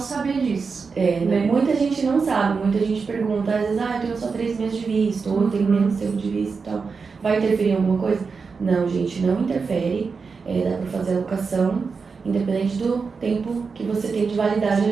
disso. Né? Muita gente não sabe, muita gente pergunta, às vezes, eu tenho só 3 meses de visto, ou eu tenho menos tempo de visto e tal. Vai interferir em alguma coisa? Não, gente, não interfere. Dá pra fazer a locação, independente do tempo que você tem de validade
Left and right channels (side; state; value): left; quieter; 5.0 dB